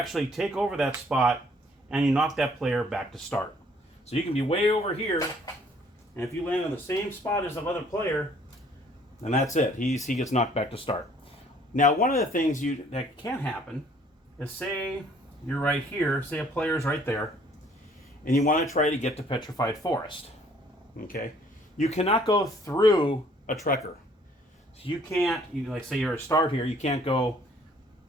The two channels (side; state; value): both; normal; correlation 0.60